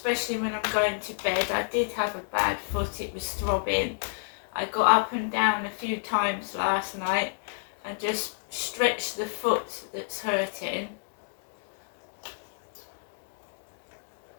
when I'm going to bed. I did have a bad foot, it was throbbing. I got up and down a few times last night and just stretched the foot that's hurting.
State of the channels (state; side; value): silent; right; digital silence